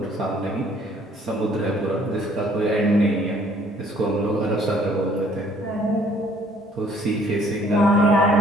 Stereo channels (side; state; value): both; normal; correlation 0.60